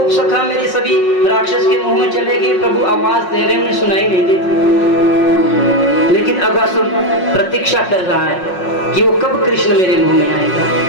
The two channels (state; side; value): late; right; 5.5 ms